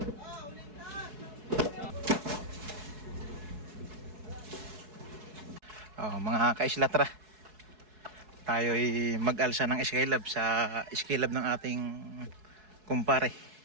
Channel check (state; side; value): late; left; 4.7 ms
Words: Oh, mga kaisla, tara. Tayo'y mag-alsa ng skilab sa skilab ng ating kumpare.